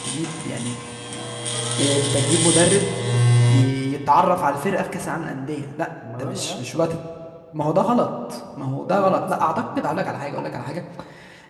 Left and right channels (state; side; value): identical; both; correlation 1.00